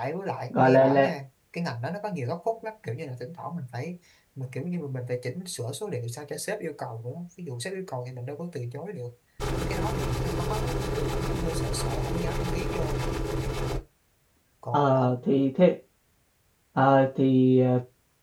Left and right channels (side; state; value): both; identical; correlation 1.00